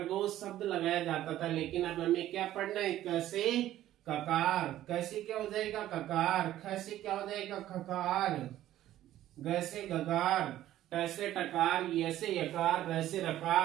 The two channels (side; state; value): left; quieter; 13.4 dB